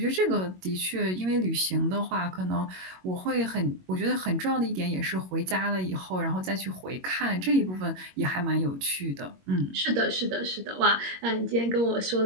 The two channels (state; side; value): late; left; 22 ms